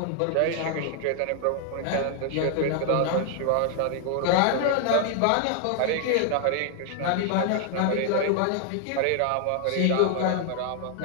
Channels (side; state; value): both; different; correlation 0.00